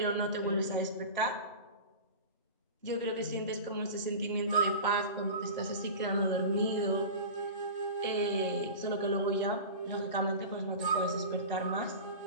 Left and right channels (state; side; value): inverted; both; correlation -0.32